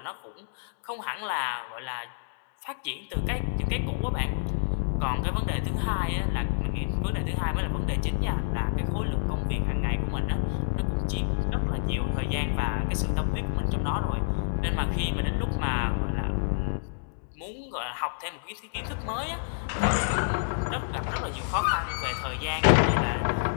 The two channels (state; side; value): silent; right; digital silence